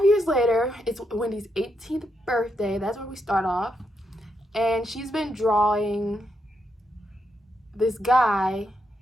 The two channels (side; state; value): both; normal; correlation 0.81